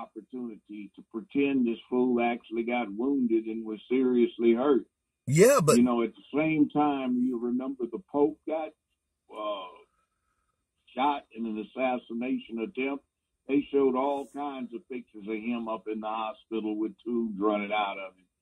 to pretend this fool actually got wounded and was seriously hurt. Yeah, but... You know, at the same time, you remember the Pope got shot in an assassination attempt. They showed all kinds of pictures of him up in the hospital with tubes running out of him.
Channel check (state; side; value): identical; both; correlation 1.00